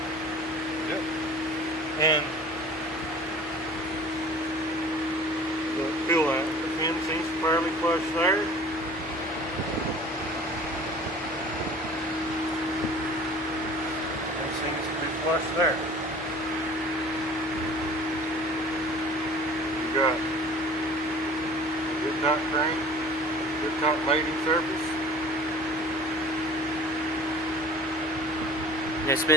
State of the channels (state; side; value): normal; both; correlation 0.45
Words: Yep. And feel that the pin seems fairly flush there. It seems to be flush there. You got a good top crank, good top mating surface. And it